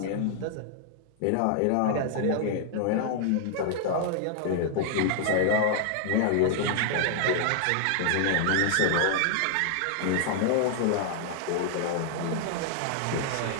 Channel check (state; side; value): different; both; correlation 0.00